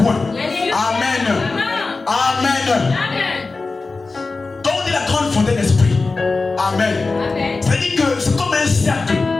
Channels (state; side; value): quieter; right; 3.8 dB